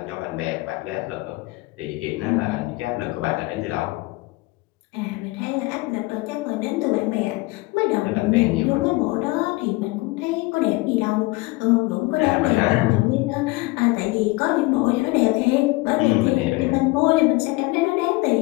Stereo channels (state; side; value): quieter; right; 22.5 dB